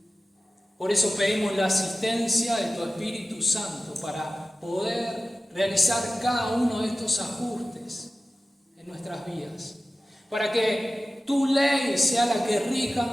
Por eso pedimos la asistencia de tu Espíritu Santo para poder realizar cada uno de estos ajustes en nuestras vidas. Para que tu ley sea la que rija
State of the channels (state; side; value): normal; both; correlation 0.94